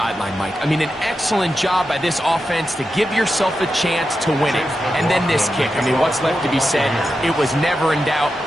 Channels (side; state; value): both; normal; correlation 0.89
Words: Mike. I mean, an excellent job by this offense to give yourself a chance to win it. And then this kick. I mean, what's left to be said? It was never in doubt,